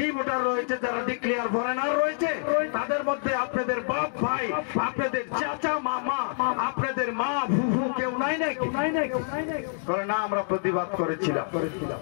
ভোটার রয়েছে, যারা ডিক্লেয়ার ফরেনার রয়েছে, তাদের মধ্যে আপনাদের বাপ ভাই, আপনাদের চাচা মামা, আপনাদের মা ফুফু কেউ নাই নাকি? না, আমরা প্রতিবাদ করেছিলাম।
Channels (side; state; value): right; silent; digital silence